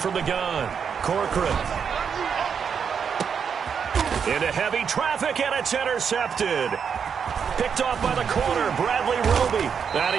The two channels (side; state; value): left; quieter; 6.9 dB